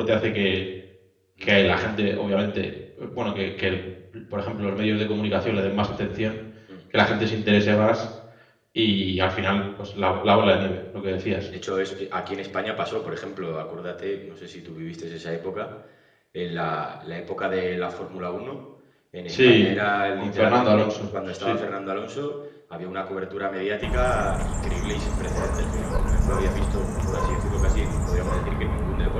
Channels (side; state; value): both; identical; correlation 1.00